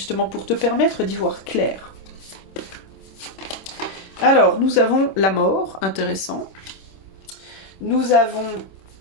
pour te permettre d'y voir clair? Alors, nous avons la mort, intéressant. Nous avons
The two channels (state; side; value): late; right; 26 ms